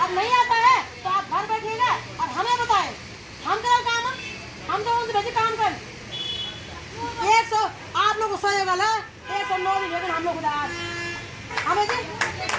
अब नहीं आता है तो आप घर बैठिएगा और हमें बताएं, हम करें काम, हम तो उनसे भेजे काम कर 100 आप लोग गुस्सा होगा ना 109 दिन, लेकिन हम लोग उदास हमें जी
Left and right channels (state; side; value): identical; both; correlation 1.00